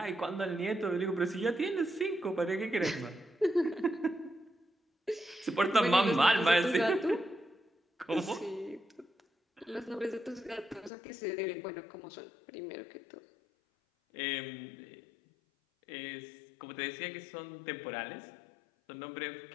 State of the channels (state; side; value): drops out; right; at 10.9 s